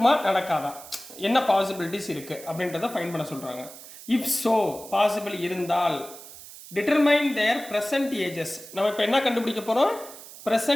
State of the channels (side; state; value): right; noise; hiss, 16 dB below the sound